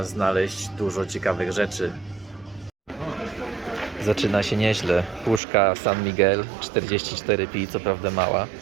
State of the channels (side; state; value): left; drops out; at 5.4 s